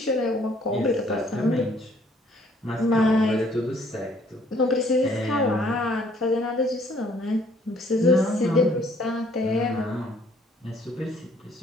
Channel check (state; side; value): normal; both; correlation 0.62